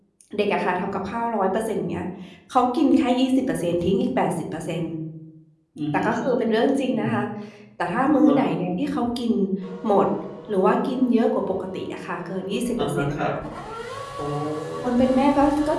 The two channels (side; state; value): both; identical; correlation 1.00